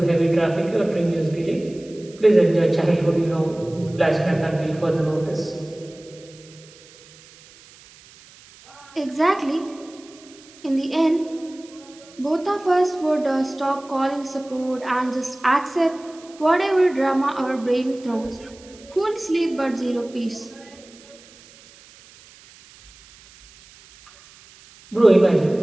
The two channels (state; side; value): noise; right; hiss, 24 dB below the sound